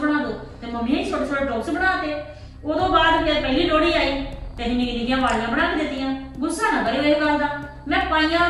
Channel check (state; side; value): identical; both; correlation 1.00